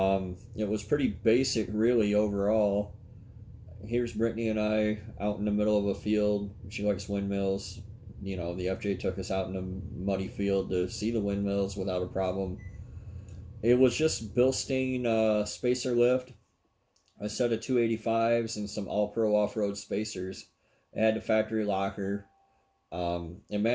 was pretty basic, really, overall. Here's Brittany and I out in the middle of a field. She likes windmills. The FJ took us out in a muddy field to see the windmills without a problem. It was just Bilstein spacer lift, a set of 285s, and some All Pro off road spacers. It had the factory locker. It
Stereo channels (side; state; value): both; identical; correlation 1.00